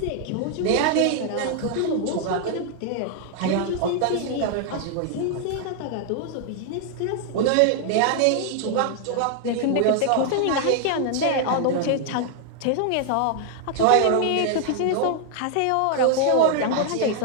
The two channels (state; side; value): different; both; correlation 0.00